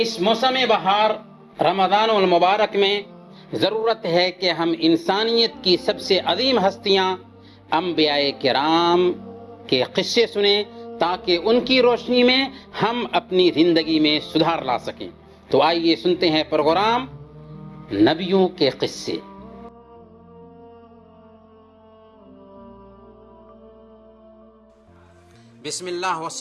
اس موسم بہار رمضان المبارک میں ضرورت ہے کہ ہم انسانیت کی سب سے عظیم ہستیاں انبیاء کرام کے قصے سنیں تاکہ ان کی روشنی میں ہم اپنی زندگی میں سدھار لا سکیں۔ تو آئیے سنتے ہیں پروگرام نبیوں کے قصے۔ بسم اللہ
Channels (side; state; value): both; identical; correlation 1.00